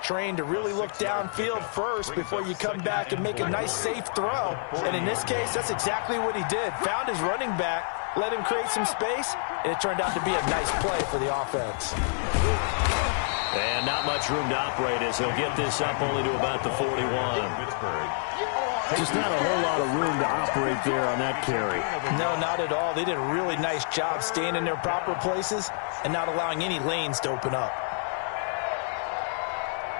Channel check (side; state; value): right; silent; 58 dB below the other